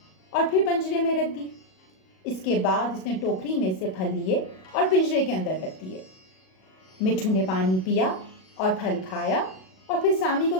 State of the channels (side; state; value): right; late; 38 ms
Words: اور پھر پنجرے میں رکھ دی۔ اس کے بعد اس نے ٹوکری میں سے پھل لیے اور پنجرے کے اندر رکھ دیے۔ مٹھو نے پانی پیا اور پھل کھایا اور پھر سامی کو